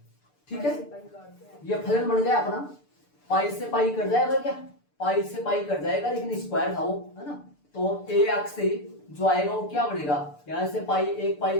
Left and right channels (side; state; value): right; late; 6.8 ms